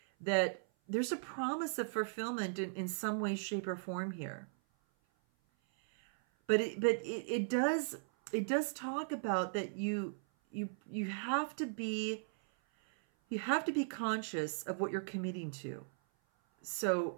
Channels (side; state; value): left; silent; 53 dB below the other